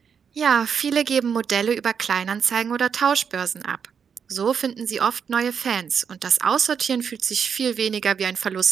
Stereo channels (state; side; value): quieter; left; 6.9 dB